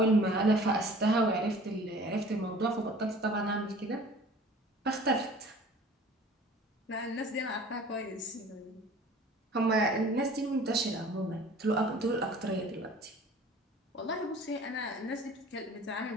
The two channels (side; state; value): both; normal; correlation 0.47